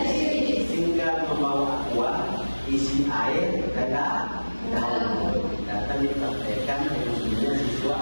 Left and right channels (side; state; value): both; inverted; correlation -1.00